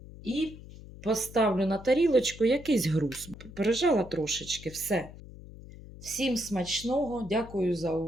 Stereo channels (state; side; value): noise; left; hum, 16 dB below the sound